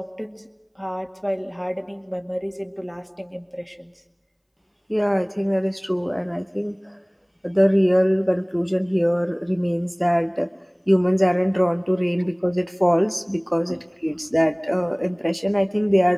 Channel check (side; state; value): both; identical; correlation 1.00